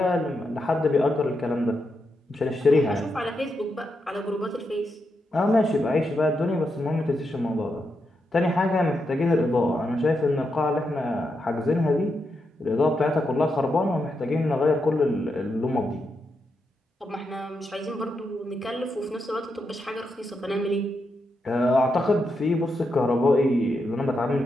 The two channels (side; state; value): both; normal; correlation 0.84